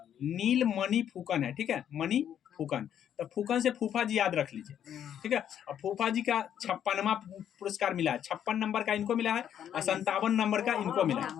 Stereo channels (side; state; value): right; quieter; 9.7 dB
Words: नीलमणि फूकन है, ठीक है, मणि फूकन। तो फूकन से फूफा जी याद रख लीजिए, ठीक है। और फूफा जी का 56वां पुरस्कार मिला है, 56 नंबर का इनको मिला है और 57 नंबर का इनको मिला है,